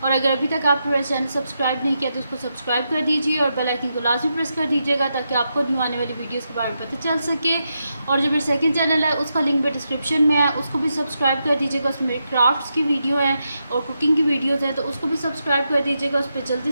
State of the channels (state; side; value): inverted; both; correlation -0.85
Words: और अगर अभी तक आपने मेरा चैनल सब्सक्राइब नहीं किया तो उसको सब्सक्राइब कर दीजिए और बेल आइकन को लाजमी प्रेस कर दीजिएगा ताकि आपको न्यू आने वाली वीडियोज़ के बारे में पता चल सके। और जो मेरा सेकंड चैनल है उसका लिंक भी डिस्क्रिप्शन में है, उसको भी सब्सक्राइब कर दीजिएगा। उसमें मेरे क्राफ्ट्स की वीडियो है और कुकिंग की वीडियोज़ हैं, तो उसको भी सब्सक्राइब कर दीजिएगा। उस पर